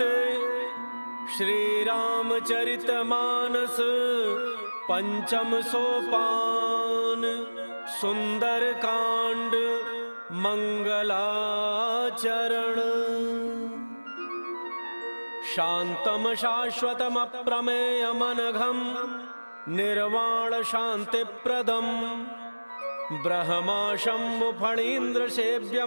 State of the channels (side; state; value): both; inverted; correlation -1.00